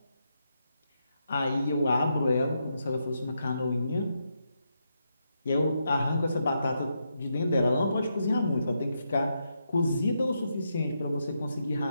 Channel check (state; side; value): inverted; both; correlation -0.82